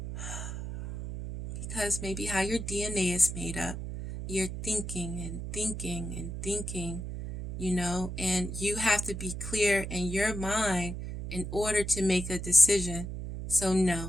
because maybe how your DNA is made up, you're thinking and thinking and thinking, and you have to be clear in your mind in order to make a decision. So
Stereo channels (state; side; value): noise; right; hum, 6 dB below the sound